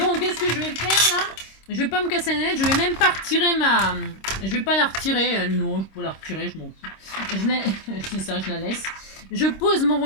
qu'est-ce que je vais faire là? Je vais pas me casser la tête. Je vais même pas retirer ma... Je vais pas la retirer. Non, je peux la retirer. Je m'en fous. C'est ça, je la laisse. Je pose mon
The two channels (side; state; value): right; late; 26 ms